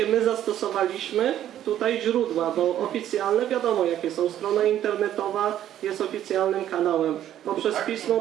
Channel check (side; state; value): left; quieter; 11.5 dB